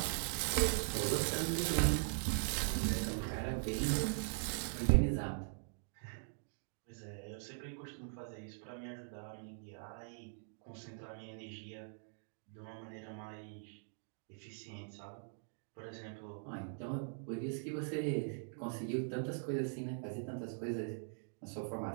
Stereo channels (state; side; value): silent; left; digital silence